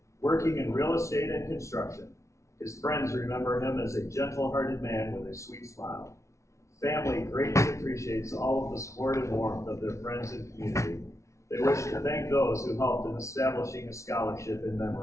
Working in real estate and construction, his friends remember him as a gentle-hearted man with a sweet smile. Family greatly appreciates all of the support and warmth of their friends and community. They wish to thank those who helped in establishing a scholarship in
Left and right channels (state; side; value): late; right; 0.14 ms